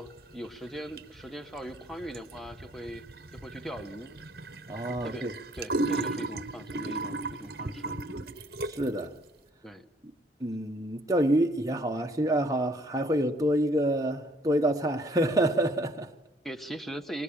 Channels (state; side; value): normal; both; correlation 0.62